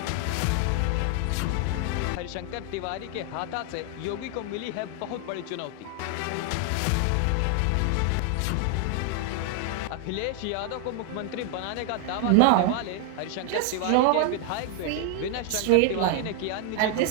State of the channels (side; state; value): both; different; correlation 0.00